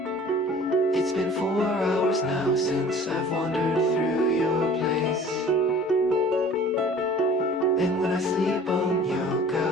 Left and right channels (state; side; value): normal; both; correlation 0.47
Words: It's been 4 hours now since I've wandered through your place. And when I sleep on your